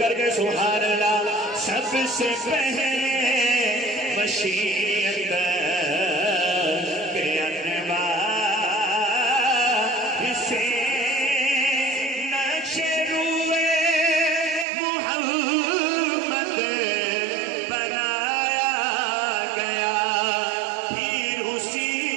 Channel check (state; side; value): drops out; left; at 14.7 s